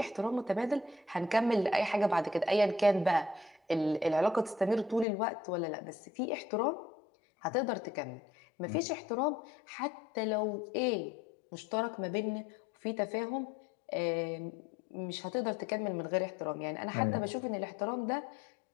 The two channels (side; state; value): right; drops out; at 5.1 s